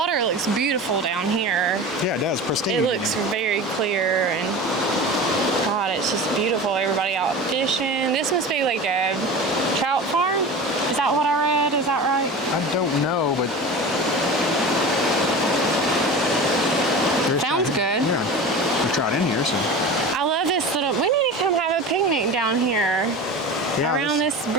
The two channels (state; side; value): normal; both; correlation 0.32